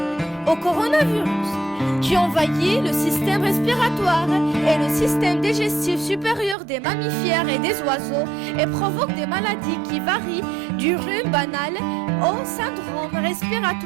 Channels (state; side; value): drops out; left; at 6.6 s